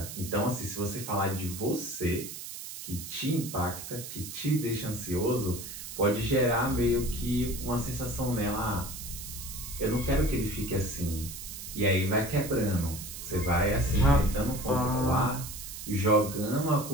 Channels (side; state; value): right; noise; hiss, 10 dB below the sound